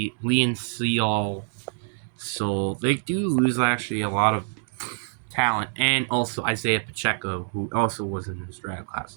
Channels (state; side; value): silent; left; digital silence